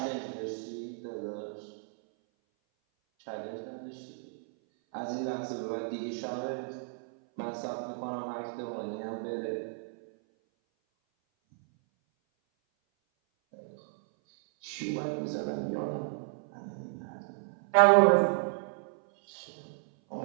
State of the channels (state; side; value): silent; left; 56 dB below the other